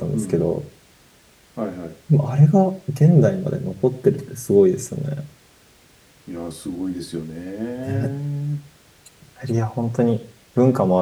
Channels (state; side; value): identical; both; correlation 1.00